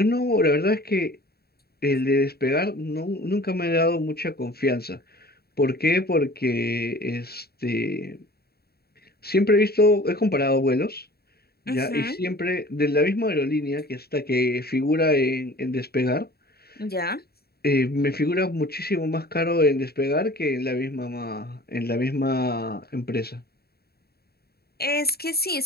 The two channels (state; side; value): late; right; 0.46 ms